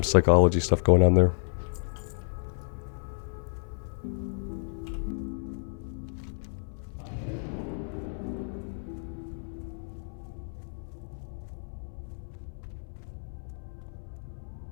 psychology stuff going on there.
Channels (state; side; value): silent; right; 57 dB below the other